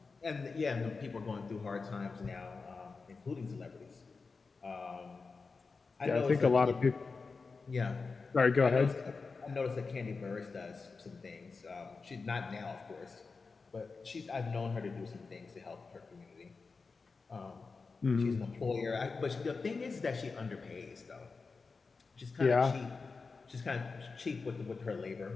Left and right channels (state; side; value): quieter; right; 4.4 dB